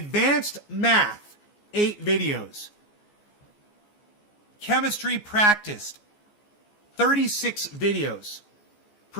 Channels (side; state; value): right; late; 14 ms